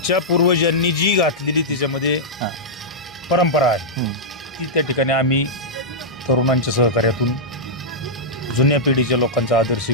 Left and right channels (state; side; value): normal; both; correlation -0.10